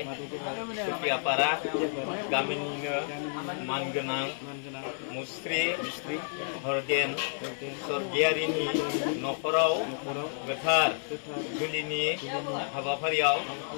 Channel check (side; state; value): right; silent; 57 dB below the other